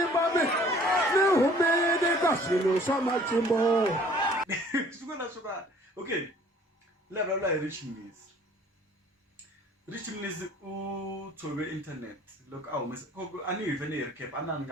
ne humene ka swilo swa matimba siku ra tsoka okay le vulavula hi Rich Miss u tobe internet look ani even a recap anani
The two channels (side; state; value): both; normal; correlation 0.54